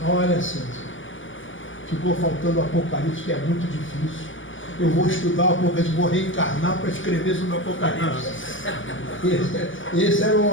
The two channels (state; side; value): late; right; 0.57 ms